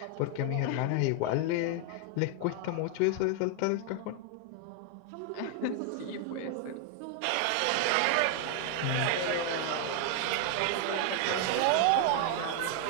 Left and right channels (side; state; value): both; different; correlation 0.00